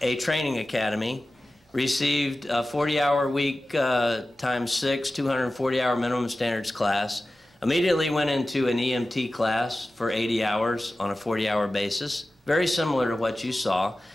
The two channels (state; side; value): normal; both; correlation 0.95